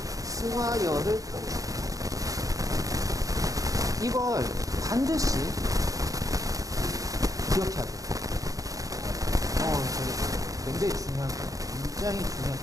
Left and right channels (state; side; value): late; left; 0.17 ms